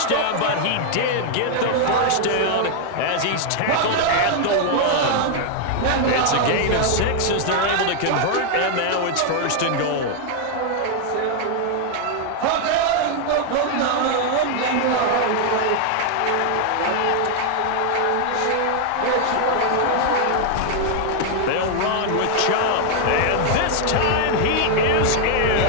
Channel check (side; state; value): both; different; correlation 0.00